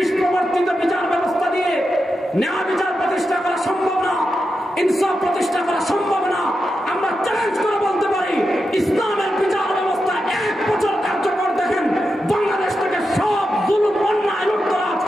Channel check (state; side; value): normal; both; correlation 0.88